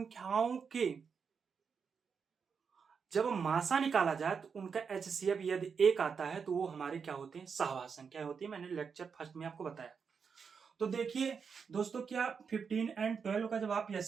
के जब मासा निकाला जाए तो उनका एचसीएफ यदि 1 आता है तो वो हमारे क्या होते हैं, सहआभाज्य संख्या होती है। मैंने लेक्चर फर्स्ट में आपको बताया। तो देखिए दोस्तों क्या 15 और 12 का जब आप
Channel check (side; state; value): left; quieter; 6.0 dB